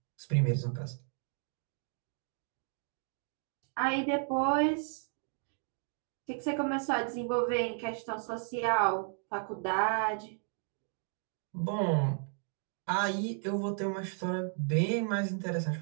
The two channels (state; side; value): silent; left; 55 dB below the other